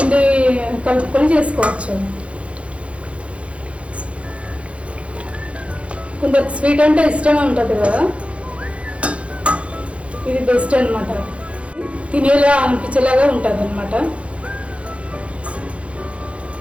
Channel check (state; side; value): late; left; 0.062 ms